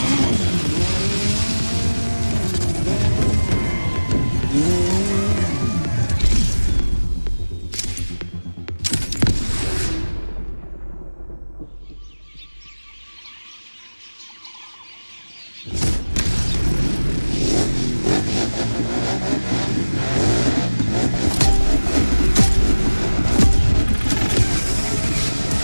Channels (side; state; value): both; inverted; correlation -1.00